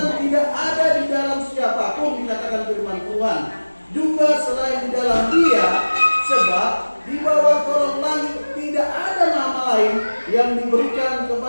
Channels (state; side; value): inverted; both; correlation -1.00